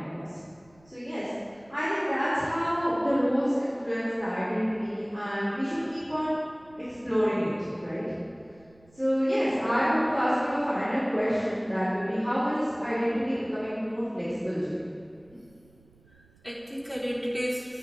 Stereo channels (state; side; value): noise; right; rumble, 29 dB below the sound